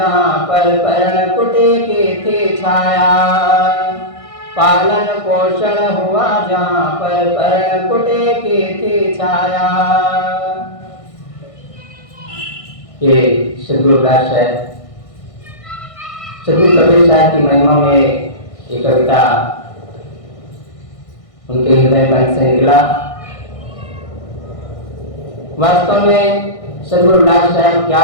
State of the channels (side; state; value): right; late; 1.6 ms